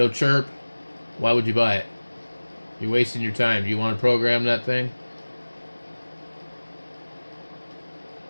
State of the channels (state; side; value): inverted; both; correlation -1.00